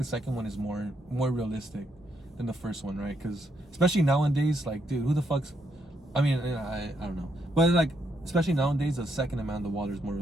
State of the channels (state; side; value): normal; both; correlation 0.77